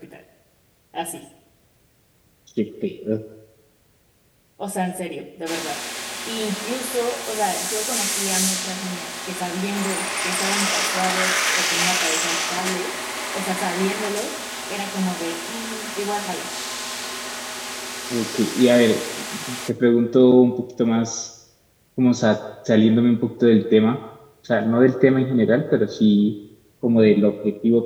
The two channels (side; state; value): both; identical; correlation 1.00